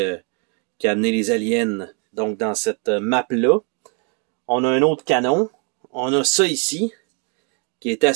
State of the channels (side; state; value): left; quieter; 37.6 dB